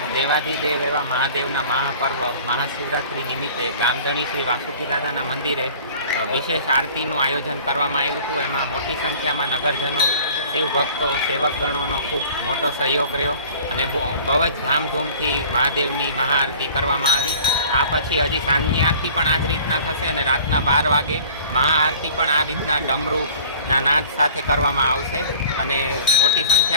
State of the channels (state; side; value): inverted; both; correlation -0.46